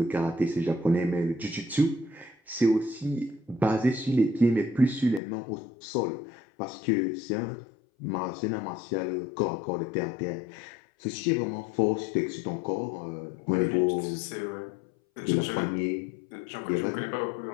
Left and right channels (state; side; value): drops out; right; at 5.2 s